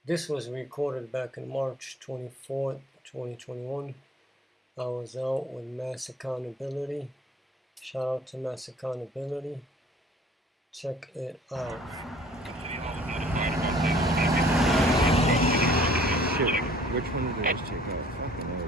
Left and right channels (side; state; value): both; normal; correlation 0.53